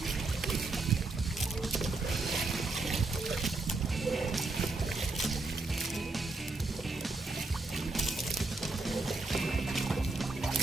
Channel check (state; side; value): quieter; left; 3.4 dB